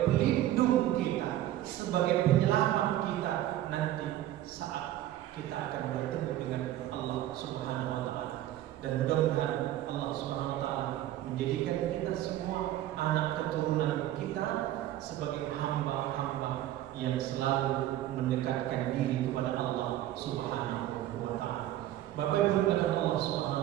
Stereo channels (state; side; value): quieter; left; 13.5 dB